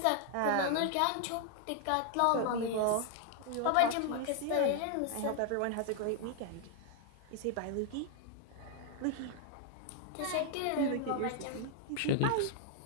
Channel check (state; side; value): different; both; correlation 0.00